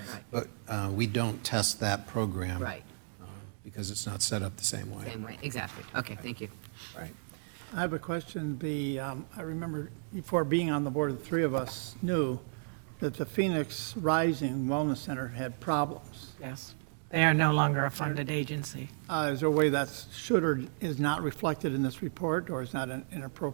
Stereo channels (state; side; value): silent; left; digital silence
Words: Right. but we don't test that program. Right. because it's not set up the same way. Same way, exactly. Okay, thank you. Right. I have a question. I remember before being on the board, the three of us knew that the Phoenix Rising Wellness Center had problems. Yes. They are no longer a funded agency. Is there a way that's should or is not reflected in this report, or is not an